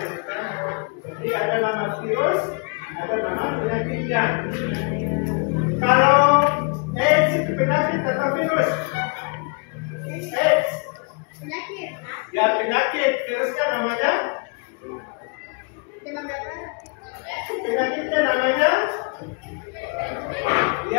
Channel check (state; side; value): quieter; right; 34.9 dB